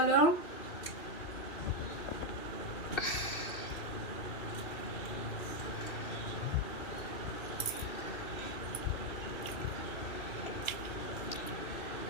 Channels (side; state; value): right; late; 2.7 ms